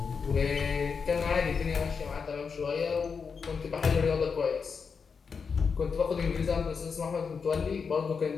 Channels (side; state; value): right; quieter; 5.7 dB